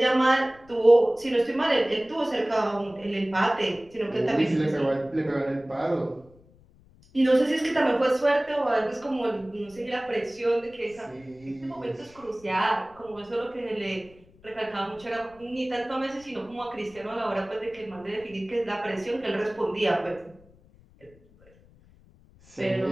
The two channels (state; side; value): noise; left; rumble, 27 dB below the sound